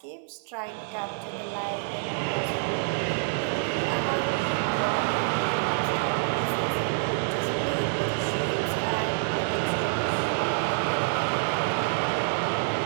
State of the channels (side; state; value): left; silent; 60 dB below the other